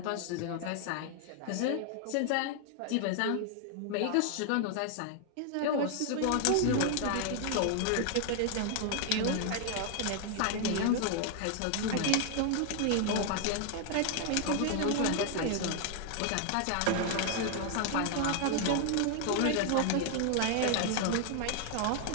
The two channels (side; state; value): both; different; correlation 0.00